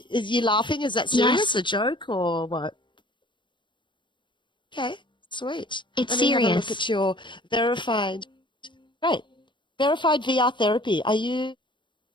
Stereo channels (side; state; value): right; late; 0.23 ms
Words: Is you laughing? Is that serious? Yes, A joke or what? Okay. Sweet. it's Let me have a look serious. at your verified. Great. Verified VR therapy. Are you